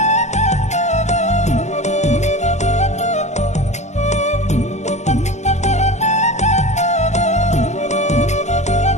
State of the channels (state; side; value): late; right; 0.33 ms